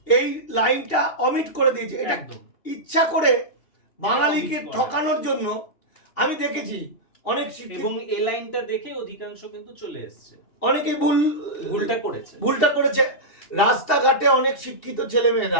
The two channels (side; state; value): right; late; 2.7 ms